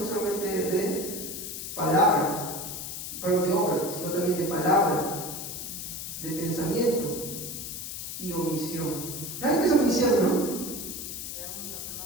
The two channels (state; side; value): noise; left; hiss, 7 dB below the sound